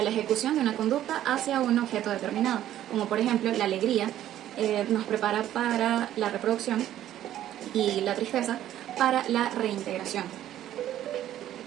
la ejecución de una conducta hacia un objeto determinado, como por ejemplo la alegría nos prepara para la reproducción y la tristeza para la reintegración.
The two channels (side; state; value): left; quieter; 12.3 dB